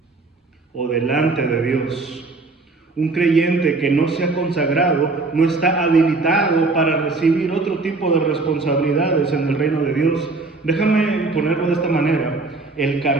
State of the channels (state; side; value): quieter; left; 3.6 dB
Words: o delante de Dios. Un creyente que no se ha consagrado no está habilitado para recibir otro tipo de responsabilidades en el reino de Dios. Déjame ponerlo de esta manera. El